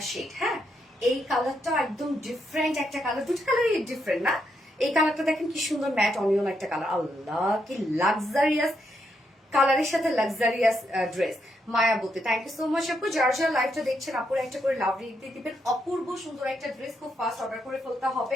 শেড। হ্যাঁ, এই কালারটা একদম ডিফারেন্ট একটা কালার, দুটো কালারই ডিফারেন্ট না? এই কালারটা দেখেন কি সুন্দর ম্যাট অনিয়ন একটা কালার। আল্লাহ কি লাক্সারিয়াস কালারের সাথে লাক্সারিয়াস ড্রেস। মায়াবতী থ্যাংক ইউ সো মাচ আপু। যার যার লাইভটা দেখছেন আপুর একটা করে লাভ দিয়ে দিবেন। অপূর্ব সুন্দর একটা ড্রেস খুব ফাস্ট অর্ডার করে ফেলতে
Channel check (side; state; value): both; normal; correlation 0.79